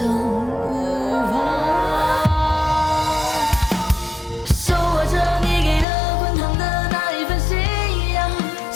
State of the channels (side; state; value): right; drops out; at 5.9 s